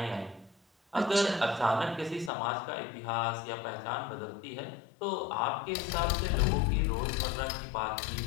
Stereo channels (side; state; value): right; drops out; at 2.3 s